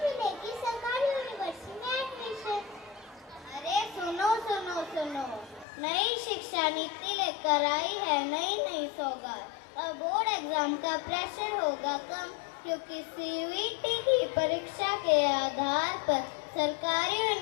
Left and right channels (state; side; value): drops out; right; at 5.7 s